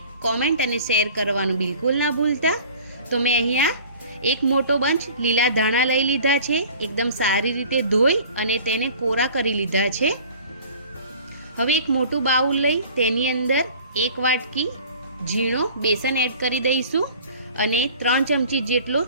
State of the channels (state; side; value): inverted; both; correlation -0.46